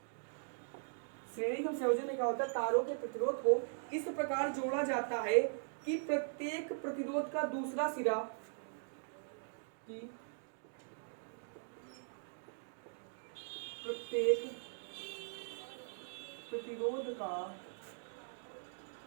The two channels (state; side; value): silent; left; digital silence